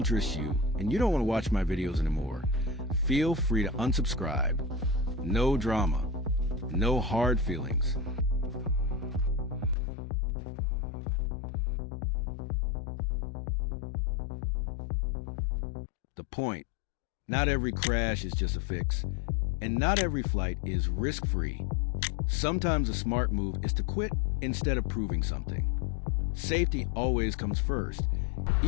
you and you don't want to watch my videos anymore, feel free to unsubscribe. No drama, no hard feelings. The point: not every crash is just a fix, and not every flight is risk-free. Sometimes a smart move is to quit instead of proving something. Safety always comes first,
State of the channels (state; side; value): drops out; right; at 9.8 s